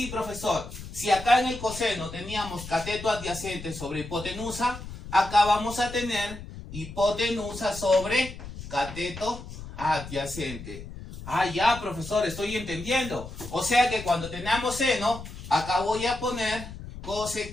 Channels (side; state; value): left; noise; rumble, 12 dB below the sound